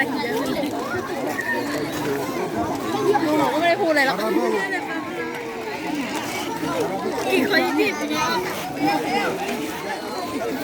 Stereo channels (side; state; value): both; identical; correlation 1.00